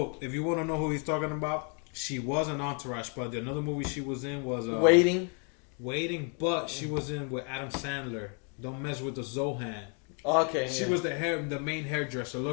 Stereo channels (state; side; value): quieter; right; 39.7 dB